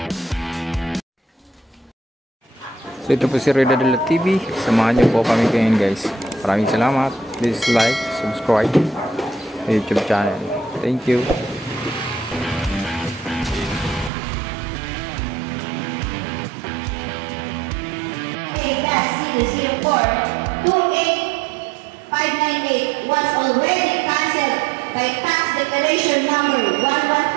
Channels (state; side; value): drops out; left; at 14.1 s